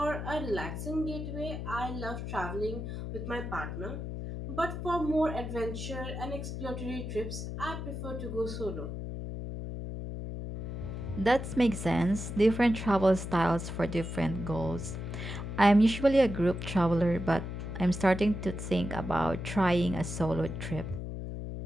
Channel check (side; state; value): left; noise; hum, 6 dB below the sound